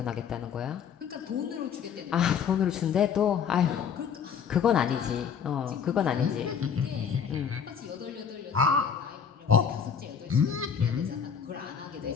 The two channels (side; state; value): right; quieter; 7.2 dB